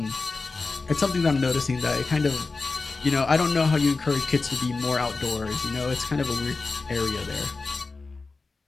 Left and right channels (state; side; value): quieter; right; 3.9 dB